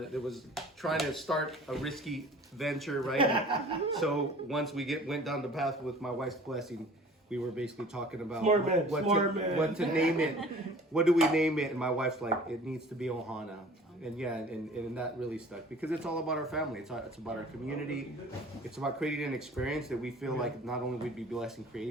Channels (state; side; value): normal; both; correlation 0.47